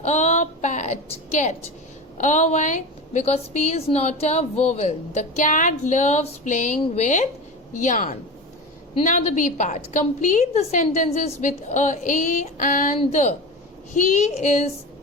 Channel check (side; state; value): both; normal; correlation 0.27